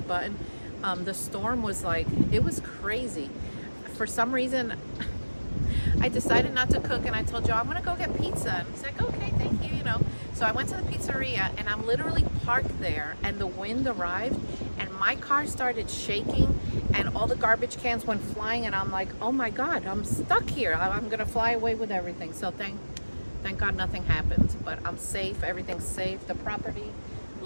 The storm was like, it was crazy. For some reason, I decided not to cook, and I told Joe I'm gonna go get pizza. And he's like, okay, thank you, you know. So I went to the pizzeria, and I'm literally parked there, and the wind arrived, and my car started shaking, and all the garbage cans went flying, and I'm like, oh my God, I'm stuck here. I'm gonna fly away with everything. So thank God nothing happened, but I'm safe. Everything's safe. The property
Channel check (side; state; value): both; inverted; correlation -1.00